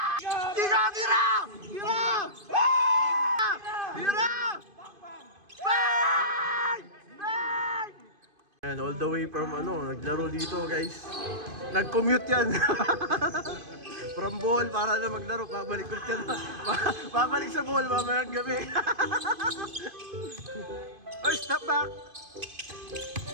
Tira! Tira! Tira! Bang! Bang! And all the way from naglaro dito guys. Nag-commute yan. From Bohol para na maglaro. Babalik ulit yan. Babalik sa Bohol mamayang gabi. Oy, step back!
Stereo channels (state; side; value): late; left; 2.5 ms